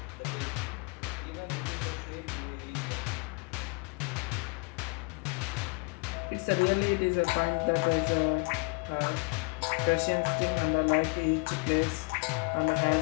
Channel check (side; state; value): right; quieter; 30.9 dB